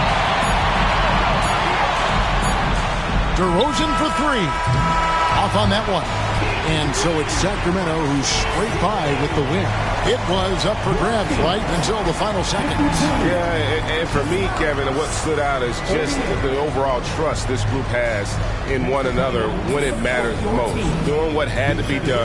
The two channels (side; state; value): both; identical; correlation 1.00